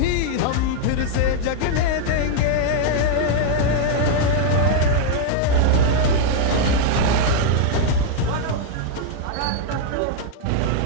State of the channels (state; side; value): different; both; correlation 0.00